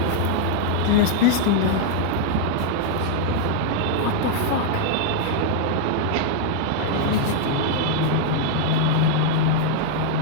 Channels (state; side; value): different; both; correlation 0.00